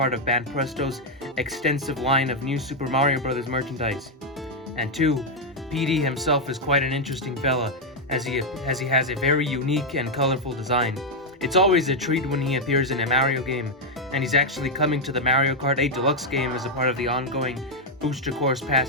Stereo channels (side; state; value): both; normal; correlation 0.01